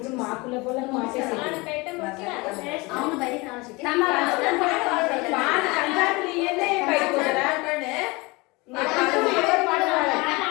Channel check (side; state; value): right; quieter; 24.7 dB